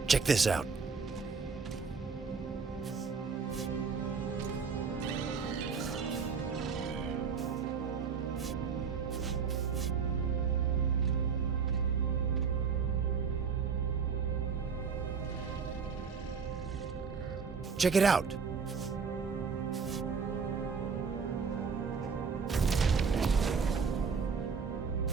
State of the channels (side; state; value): left; quieter; 5.7 dB